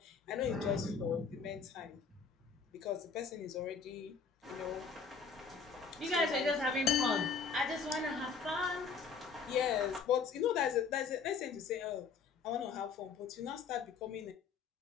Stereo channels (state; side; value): quieter; right; 5.5 dB